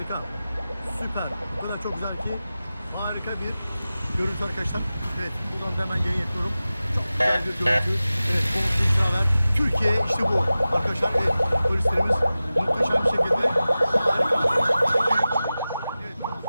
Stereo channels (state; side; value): inverted; both; correlation -0.96